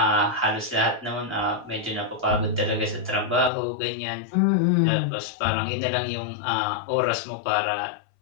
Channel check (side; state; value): right; drops out; at 3.5 s